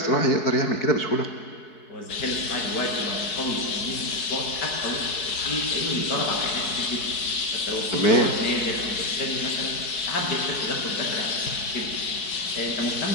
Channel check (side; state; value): right; late; 4.7 ms